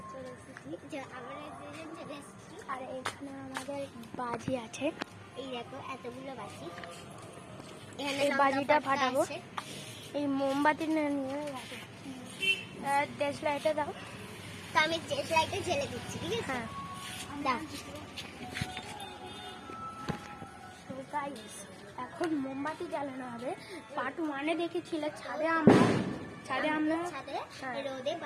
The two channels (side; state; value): both; identical; correlation 1.00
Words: চলে এসেছি, আমরা দুজন চলে এসেছি। আর এখানে আমাদের বাজি আছে। এই দেখো এতগুলো বাজি, এই বাজিটা ফাটাবো। এই মোমবাতি নিয়ে গেছে, দেশলাইটা দাও। তো আমি লাইটে জ্বেলে দিচ্ছি, ঠিক আছে? হ্যাঁ দাও। তো গাইস এখন মোমবাতি জ্বালানো হবে। পার্ট 1-এ দেখেছিলে ছাদে আমরা ছাদে হ্যাঁ। রোদে